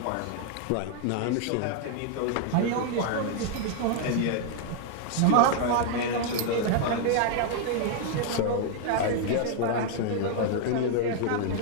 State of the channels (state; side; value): different; both; correlation 0.00